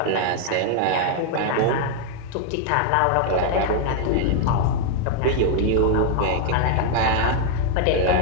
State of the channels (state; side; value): different; both; correlation 0.00